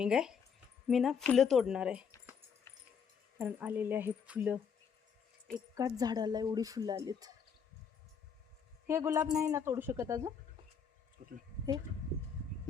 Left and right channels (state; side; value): quieter; right; 6.6 dB